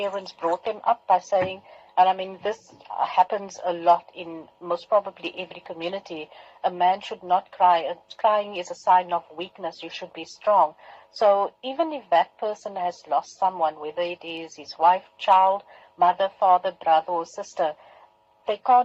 brought them up by saying, and I mean this happens a lot in most probably every community, a man should not cry. Crying is a sign of weakness. You should be strong. So even if that person has lost someone, whether it is his wife, child, mother, father, brother or sister, they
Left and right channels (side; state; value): both; identical; correlation 1.00